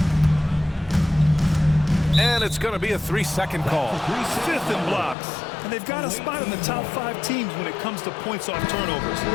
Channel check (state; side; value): drops out; right; at 5.2 s